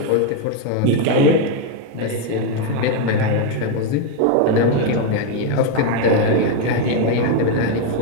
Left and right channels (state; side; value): different; both; correlation 0.01